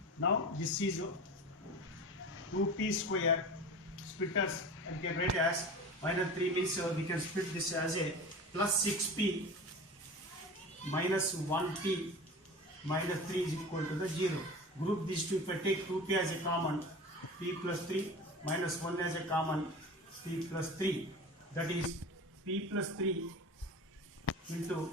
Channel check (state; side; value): normal; both; correlation 0.34